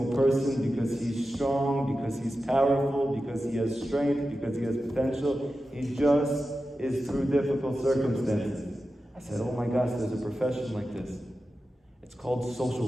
person because he's strong, because he's powerful, because he has strength, because he has potential. He just is through difficult circumstances. I said, oh my gosh, there's a profession like this. It's called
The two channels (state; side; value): normal; both; correlation 0.92